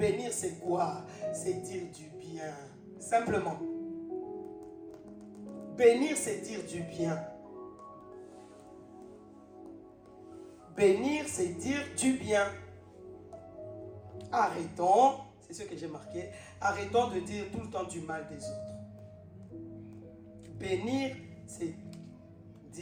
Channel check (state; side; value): identical; both; correlation 1.00